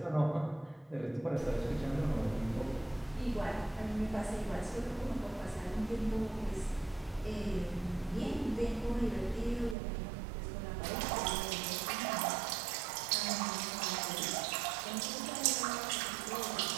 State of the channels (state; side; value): drops out; left; at 9.8 s